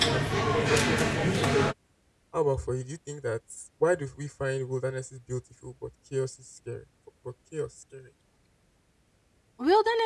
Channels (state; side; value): identical; both; correlation 1.00